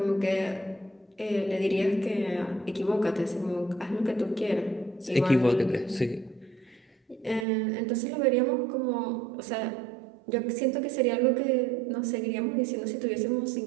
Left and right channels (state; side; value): drops out; left; at 7.5 s